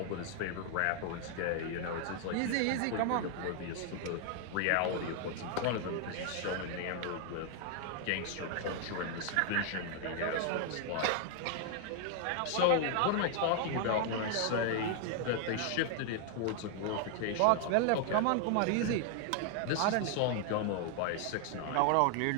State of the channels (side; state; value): both; different; correlation 0.00